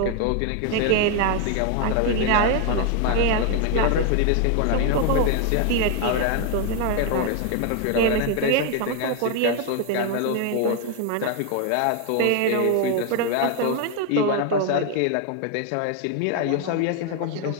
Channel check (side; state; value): both; different; correlation 0.01